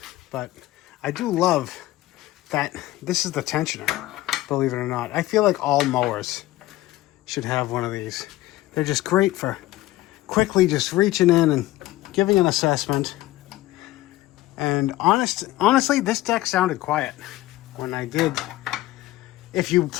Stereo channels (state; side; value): quieter; right; 16.8 dB